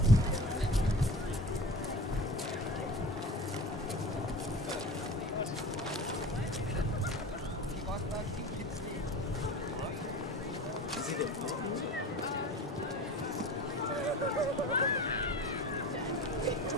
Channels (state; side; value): normal; both; correlation 0.35